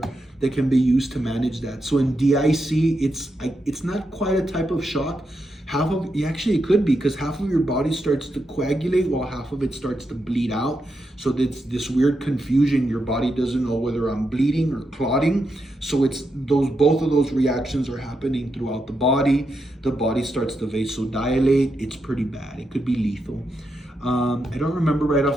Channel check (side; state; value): both; normal; correlation 0.84